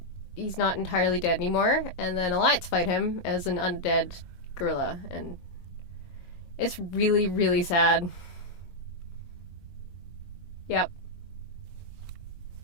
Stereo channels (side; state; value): right; late; 22 ms